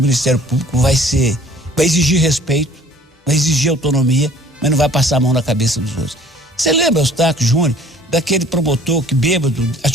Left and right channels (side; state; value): both; normal; correlation 0.53